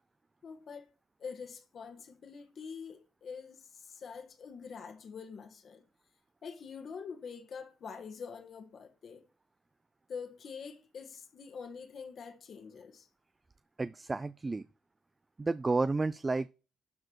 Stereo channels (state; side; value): normal; both; correlation 0.93